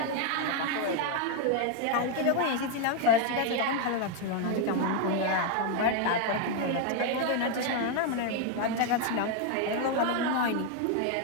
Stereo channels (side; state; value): both; different; correlation 0.00